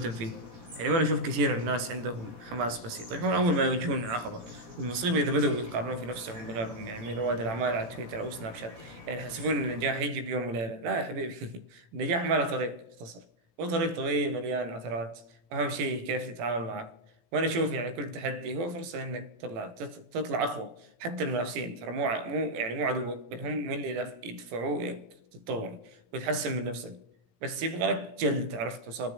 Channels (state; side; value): late; left; 17 ms